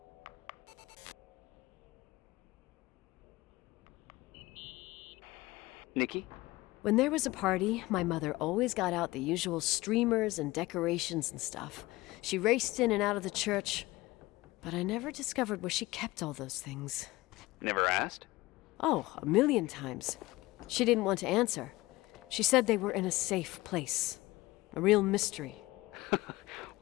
Nikki? When there was a party, my mother always got out the usual streamers and decorations and stuff. She raced in and out of the church, but I never discovered where she kept all those things. Never asked? Oh, 1,000,000 times. She didn't want to answer. She said they were in a safe place. A real mystery.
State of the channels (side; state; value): right; quieter; 19.7 dB